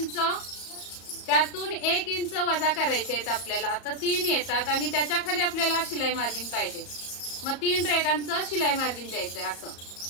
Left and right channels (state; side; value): late; right; 34 ms